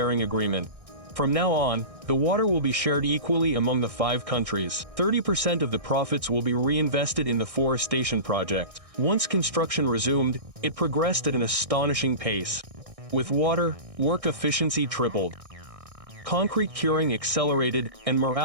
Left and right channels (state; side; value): late; left; 1.6 ms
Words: Agreement. From now on, the water will be shared equally among the 5 countries. 30% of the profits will be reinvested in the forestation project. Once construction resumed, it progressed at an astonishing pace. With water, work efficiency tripled. Concrete curing accelerated, and